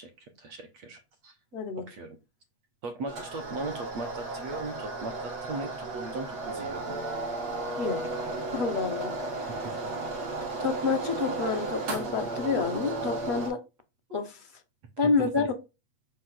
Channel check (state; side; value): late; left; 8.3 ms